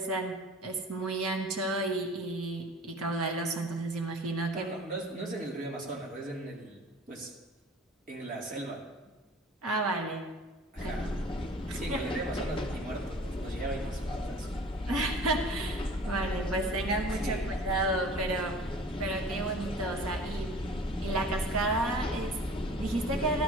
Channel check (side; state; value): both; normal; correlation 0.45